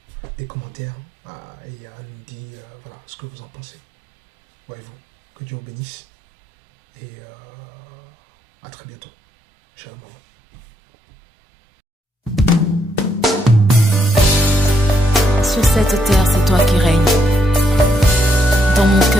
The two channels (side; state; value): both; normal; correlation 0.76